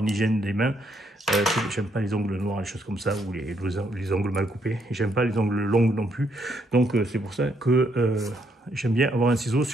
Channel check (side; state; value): both; normal; correlation 0.73